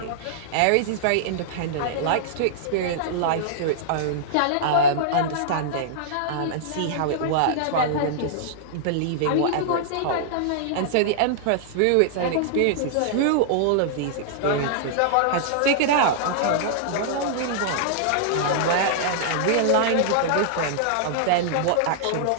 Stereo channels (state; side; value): different; both; correlation -0.02